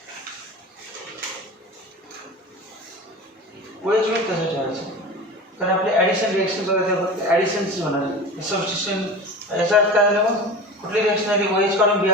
OH में कसं ठेवायचं कारण आपले ॲडिशन रिएक्शन बघा ॲडिशनच होणार सबस्टिट्यूशन याचा अर्थ काय झालं मग कुठली रिएक्शन आली OH काढून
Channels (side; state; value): both; normal; correlation 0.32